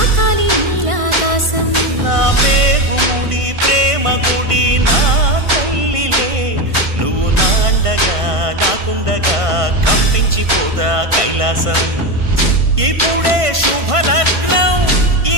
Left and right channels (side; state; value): left; late; 1.5 ms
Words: నీలాకాశం. నా పేగుముడి ప్రేమ గుడి నా తల్లిలే, నువ్వు నాండగా నాకుండగా కంపించిపోదా కైలాసం. ఇప్పుడే శుభలగ్నం